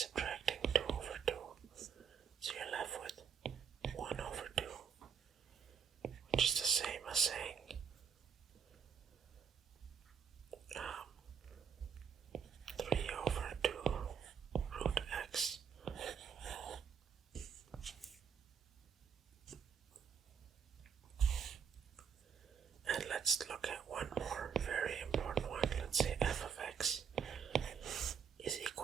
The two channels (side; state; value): left; quieter; 7.1 dB